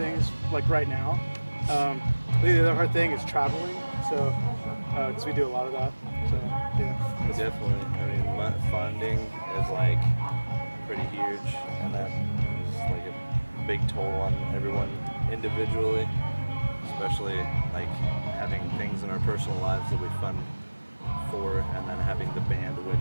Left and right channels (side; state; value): both; inverted; correlation -1.00